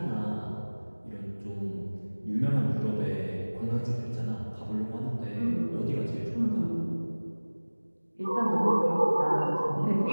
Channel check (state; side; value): inverted; both; correlation -1.00